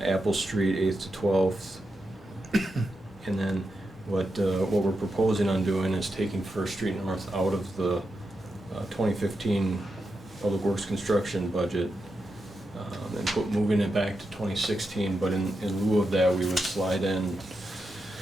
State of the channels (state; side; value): normal; both; correlation 0.87